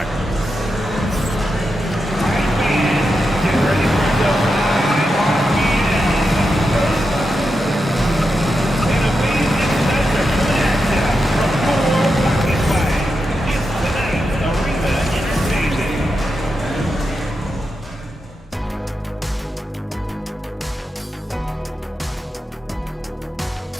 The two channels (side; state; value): both; normal; correlation 0.87